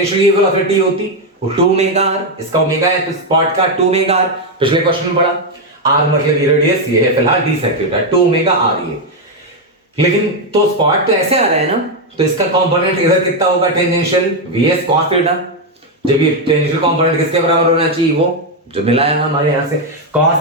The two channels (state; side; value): normal; both; correlation 0.04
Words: वेलोसिटी होती वो 2 ओमेगा आर, इसका ओमेगा है तो स्पॉट का 2 ओमेगा आर, पिछले क्वेश्चन में पढ़ा। आर मतलब ये रेडियस ये है, फिलहाल D sec theta, 2 omega R ये। लेकिन तो स्पॉट तो ऐसे आ रहा है ना, तो इसका कंपोनेंट इधर कितना होगा टेंजेंशियल वीएस कॉस थीटा, जब ये टेंजेंशियल कंपोनेंट किसके बराबर होना चाहिए, वो जो मिला है हमारे यहां से,